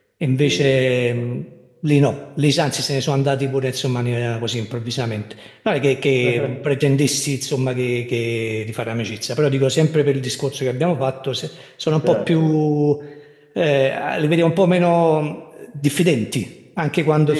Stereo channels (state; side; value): identical; both; correlation 1.00